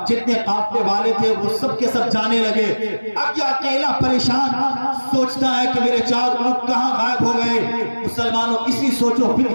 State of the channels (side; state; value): both; inverted; correlation -1.00